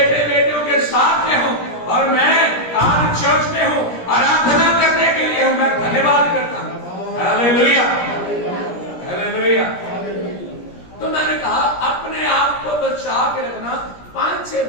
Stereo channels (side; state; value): right; late; 17 ms